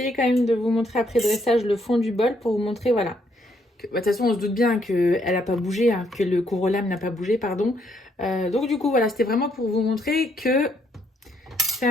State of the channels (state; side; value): normal; both; correlation 0.72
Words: quand même de vous montrer après dressage le fond du bol pour vous montrer, voilà. De toute façon, on se doute bien qu'elle n'a pas bougé, hein, que le corollaire n'a pas bougé, pardon. Donc du coup, voilà, c'était vraiment pour vous montrer que c'est